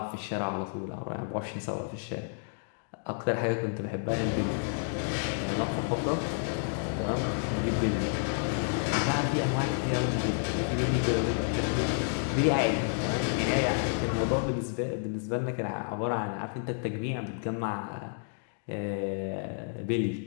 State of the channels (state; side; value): silent; right; digital silence